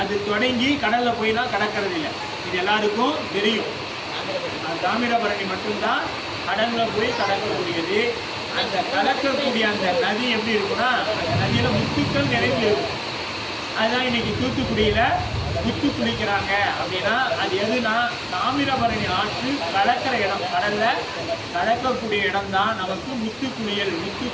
தொடங்கி கடல்ல போய்லாம் கடக்கிறது இல்லை, இது எல்லாருக்கும் தெரியும். தாமிரபரணி மட்டும்தான் கடல்ல போய் கடக்கக்கூடியது. அந்த கடக்கக்கூடிய அந்த நதி எப்படி இருக்குன்னா அந்த நதியில முத்துக்கள் நிறைந்து இருக்கும். அதுதான் இன்னைக்கு தூத்துக்குடியில முத்து குளிக்கிறாங்க அப்படின்னா அது எதுனா தாமிரபரணி ஆற்று கலக்கிற இடம், கடல்ல கலக்கக்கூடிய இடம் தான் நமக்கு முத்து குளியல், முத்து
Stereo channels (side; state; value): both; identical; correlation 1.00